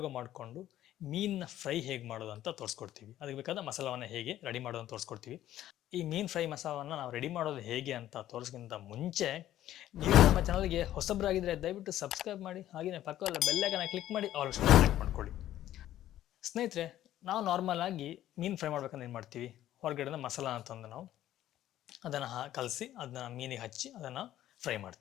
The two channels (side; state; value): right; quieter; 13.0 dB